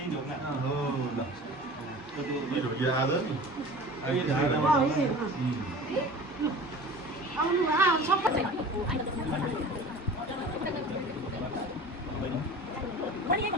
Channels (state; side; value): normal; both; correlation 0.39